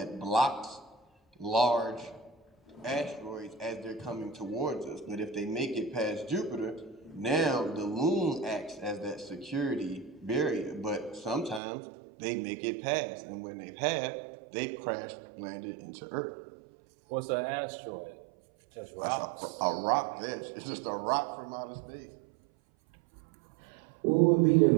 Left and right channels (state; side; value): drops out; left; at 11.6 s